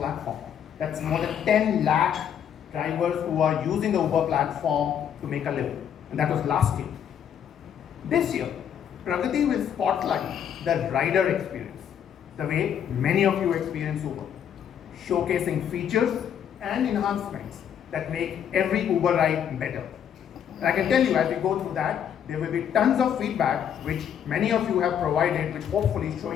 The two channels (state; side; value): quieter; right; 8.9 dB